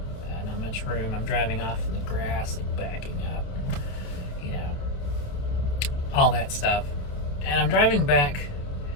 Not much room. I'm driving off in the grass and backing up. All that stuff. And I'm driving back,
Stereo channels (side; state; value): right; late; 28 ms